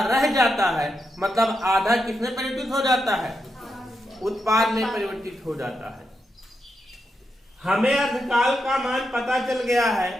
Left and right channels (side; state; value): both; normal; correlation 0.85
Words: रह जाता है, मतलब आधा किसमें परिवर्तित हो जाता है? उत्पाद में परिवर्तित हो जाता है। हमें अर्धकाल का मान पता चल गया